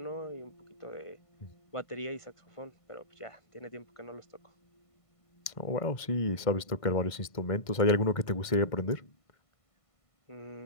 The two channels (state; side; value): late; right; 1.5 ms